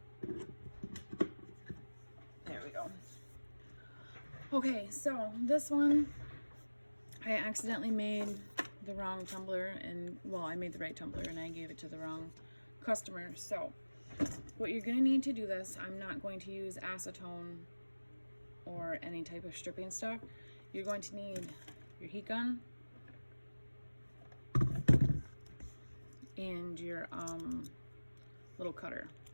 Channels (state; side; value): inverted; both; correlation -1.00